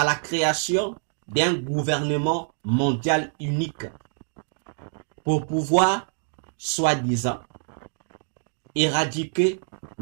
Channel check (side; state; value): left; silent; digital silence